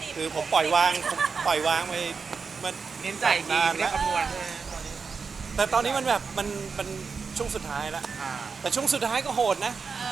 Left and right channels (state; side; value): quieter; left; 5.2 dB